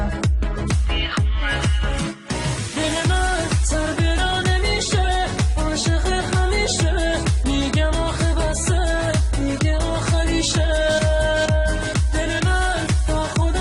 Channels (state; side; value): identical; both; correlation 1.00